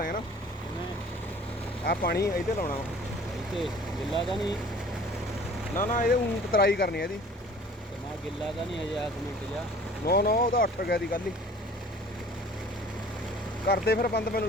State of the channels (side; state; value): both; normal; correlation 0.49